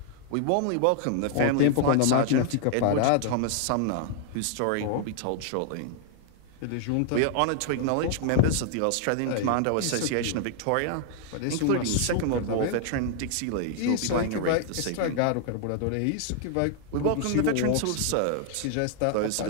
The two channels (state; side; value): different; both; correlation 0.00